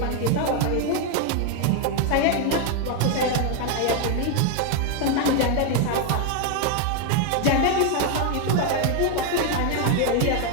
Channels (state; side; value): different; both; correlation 0.00